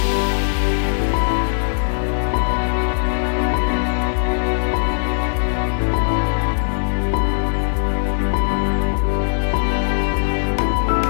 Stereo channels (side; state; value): right; silent; digital silence